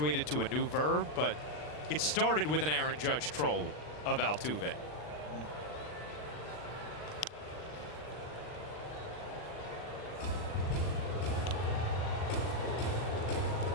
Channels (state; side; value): late; right; 40 ms